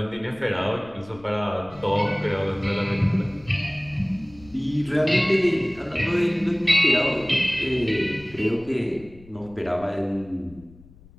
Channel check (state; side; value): noise; left; rumble, 23 dB below the sound